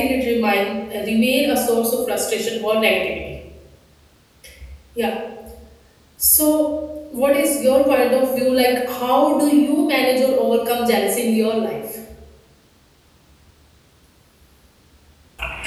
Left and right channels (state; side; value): identical; both; correlation 1.00